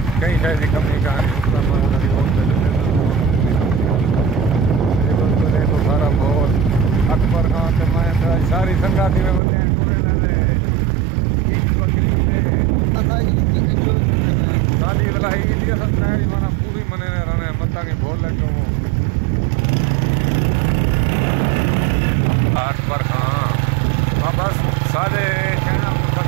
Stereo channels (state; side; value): drops out; left; at 9.4 s